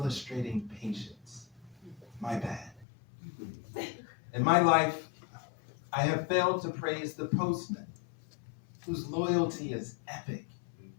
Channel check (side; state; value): right; drops out; at 2.9 s